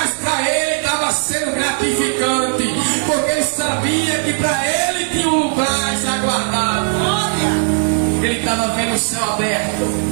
para ele estava sendo gratificante, porque ele sabia que para ele tinha um lugar já guardado. Ele estava vendo o céu aberto.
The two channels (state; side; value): silent; left; digital silence